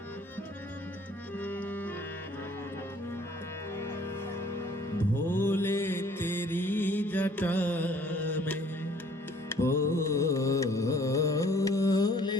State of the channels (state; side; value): normal; both; correlation 0.56